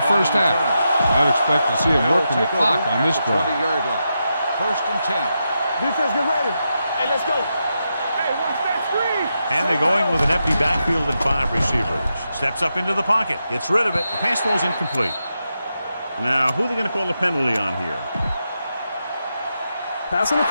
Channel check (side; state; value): both; inverted; correlation -0.86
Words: first half. I'd expect to see him working the clock on this drive. 20-yard line. First and 10. Defense, get ready. Hey, let's go. Hey, watch that screen. And they're going with an empty backfield and 5 receivers. Steps up into the pocket. Gets rid of it. The pass ball's incomplete. Now, who are they going to call a penalty on here? Pass